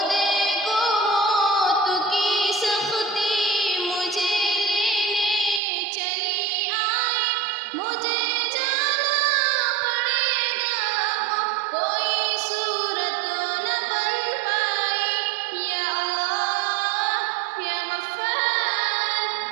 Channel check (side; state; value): left; drops out; at 5.6 s